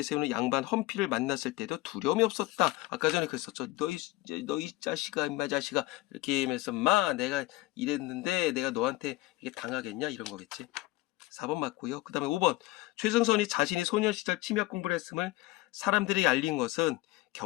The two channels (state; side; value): quieter; right; 19.0 dB